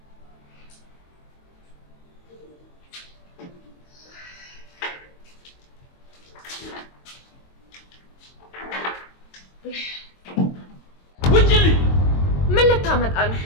ውጭልኝ! ምን ልታመጣ ነው?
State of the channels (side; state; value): right; late; 22 ms